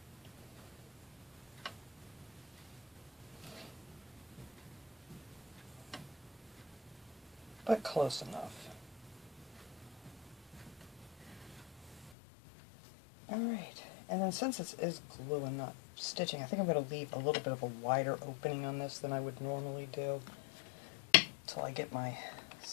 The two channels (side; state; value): right; drops out; at 12.2 s